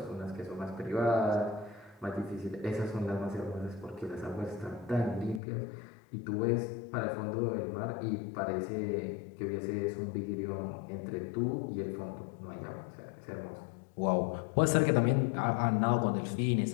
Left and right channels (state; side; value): drops out; right; at 5.4 s